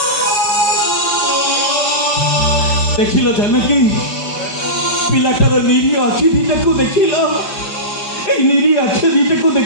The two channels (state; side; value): late; right; 4.9 ms